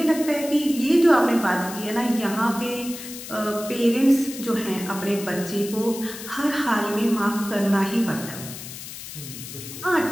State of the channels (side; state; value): left; noise; hiss, 11 dB below the sound